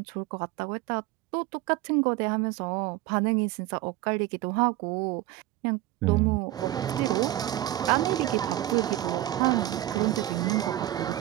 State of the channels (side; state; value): left; quieter; 15.2 dB